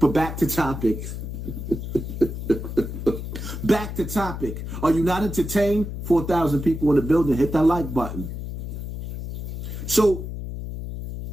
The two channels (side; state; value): left; noise; hum, 6 dB below the sound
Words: back to topic. Back to topic. Are you not entertained? 4,000 people in the building. Hit that like button. So,